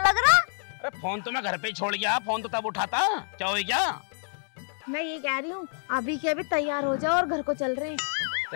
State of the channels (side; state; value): right; silent; digital silence